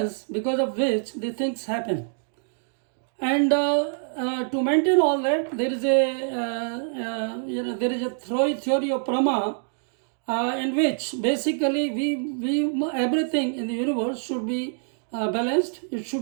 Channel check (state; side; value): silent; left; digital silence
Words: because of which the things happen. And to maintain all that, there is a theory of Brahma in which basically we everything in the universe should be balanced. It